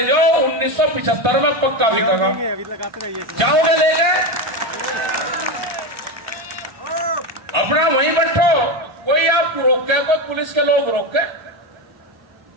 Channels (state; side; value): late; left; 1.3 ms